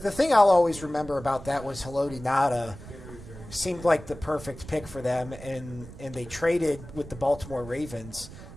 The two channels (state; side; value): noise; right; rumble, 15 dB below the sound